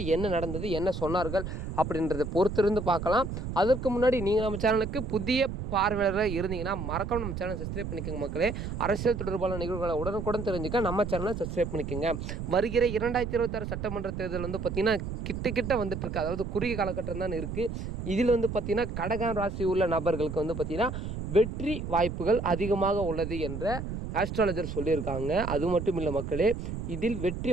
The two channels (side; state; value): right; noise; rumble, 6 dB below the sound